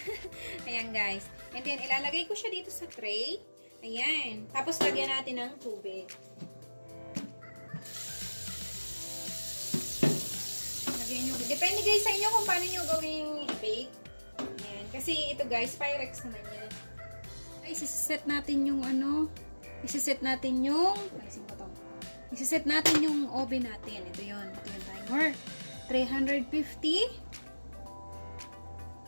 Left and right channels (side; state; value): both; inverted; correlation -1.00